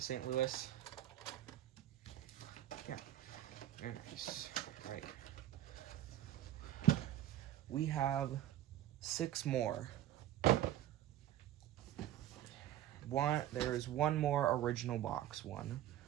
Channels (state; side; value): quieter; left; 12.5 dB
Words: St. Louis. Yeah, very nice. Right. We have 6 more. There is one more original box one.